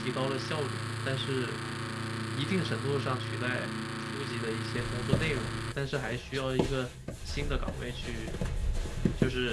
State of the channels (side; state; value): both; identical; correlation 1.00